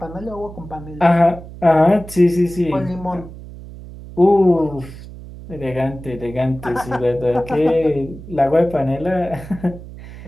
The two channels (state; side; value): noise; right; hum, 15 dB below the sound